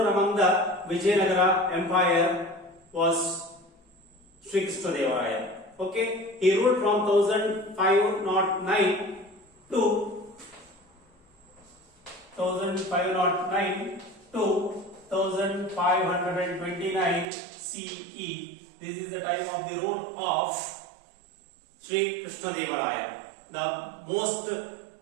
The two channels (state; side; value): drops out; left; at 17.2 s